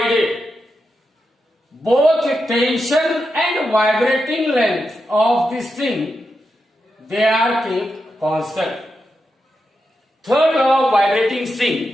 both tension and vibrating length of the string they are kept constant. Third law of vibrating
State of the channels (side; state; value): both; normal; correlation 0.87